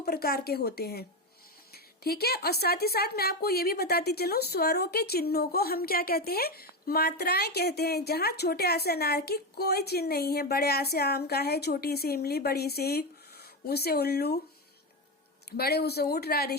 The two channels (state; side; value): normal; both; correlation 0.13